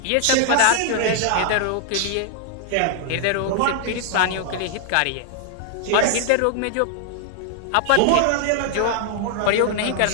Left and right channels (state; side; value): different; both; correlation 0.00